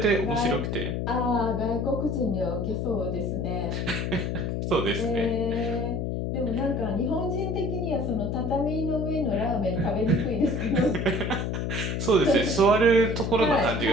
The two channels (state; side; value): noise; left; hum, 1 dB below the sound